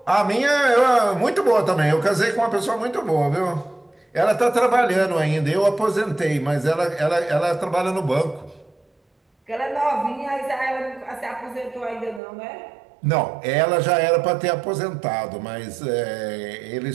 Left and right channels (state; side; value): drops out; left; at 12.2 s